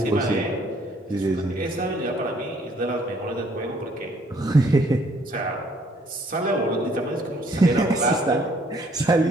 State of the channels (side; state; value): both; normal; correlation 0.64